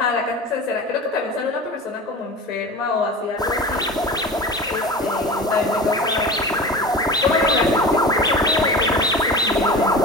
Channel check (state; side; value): normal; both; correlation 0.32